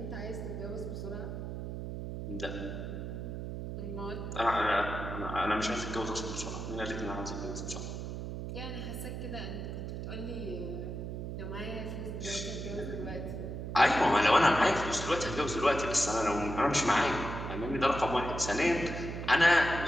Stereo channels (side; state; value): right; noise; hum, 6 dB below the sound